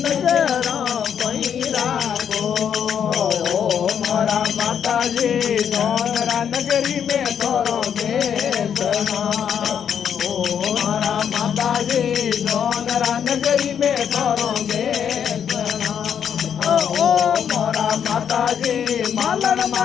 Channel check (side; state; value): right; quieter; 8.2 dB